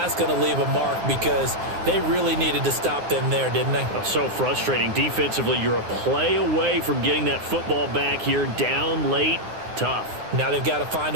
going to leave a mark because they really needed to stop them there, didn't they? Oh, so frustrating. Defensively, you're a play away from getting that football back here, down late. Tough. Now they've got to find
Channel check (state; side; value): late; left; 9.7 ms